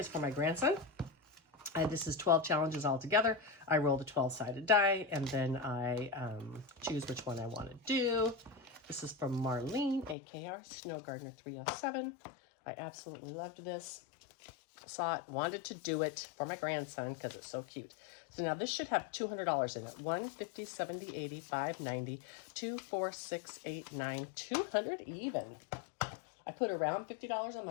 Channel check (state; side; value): drops out; right; at 10.2 s